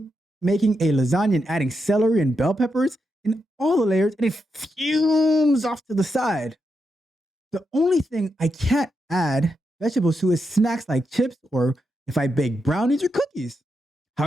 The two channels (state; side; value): normal; both; correlation 0.85